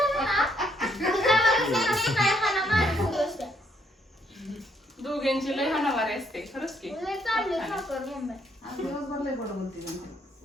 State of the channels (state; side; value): normal; both; correlation 0.71